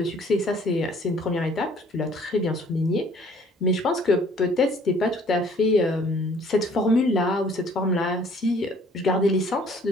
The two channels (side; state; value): both; normal; correlation 0.57